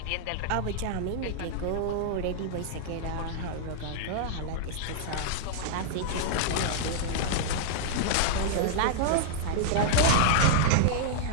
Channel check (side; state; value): both; different; correlation -0.01